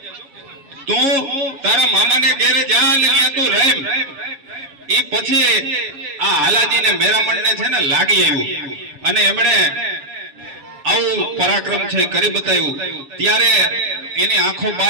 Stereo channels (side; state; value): left; late; 7.3 ms